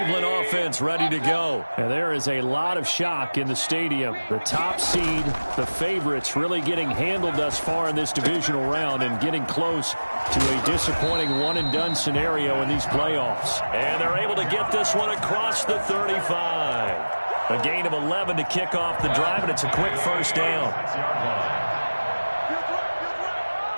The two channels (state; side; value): inverted; both; correlation -1.00